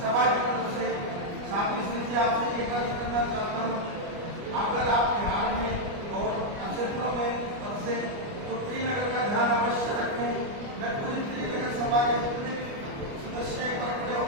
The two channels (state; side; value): late; left; 29 ms